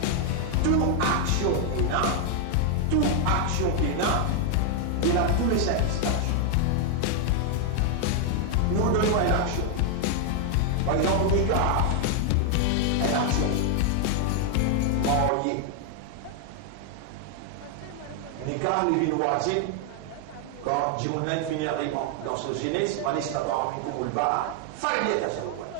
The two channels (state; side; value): different; both; correlation 0.00